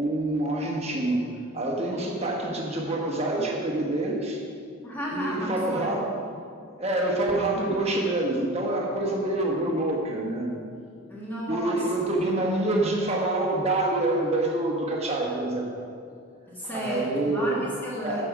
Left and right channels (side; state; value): both; normal; correlation 0.37